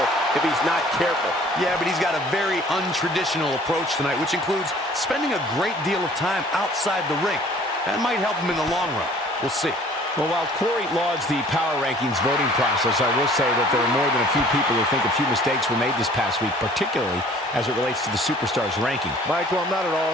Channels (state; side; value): normal; both; correlation 0.53